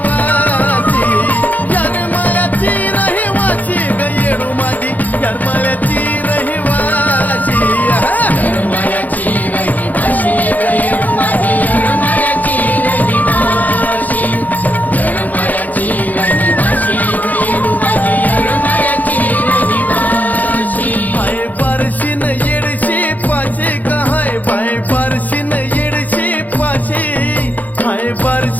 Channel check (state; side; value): late; right; 0.080 ms